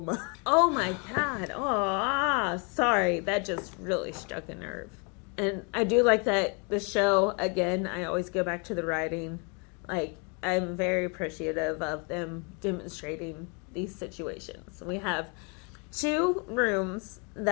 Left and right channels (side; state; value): right; quieter; 34.5 dB